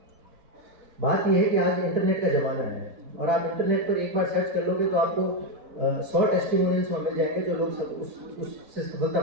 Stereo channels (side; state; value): left; late; 4.1 ms